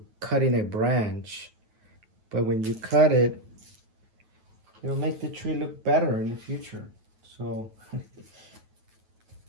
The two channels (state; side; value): late; left; 9.3 ms